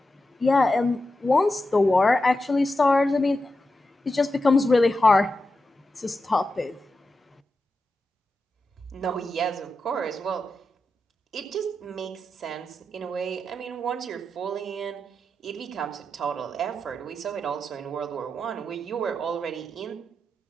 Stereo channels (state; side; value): normal; both; correlation 0.89